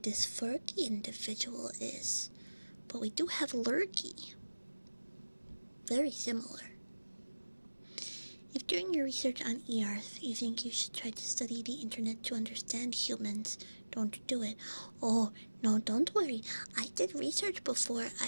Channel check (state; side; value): inverted; both; correlation -1.00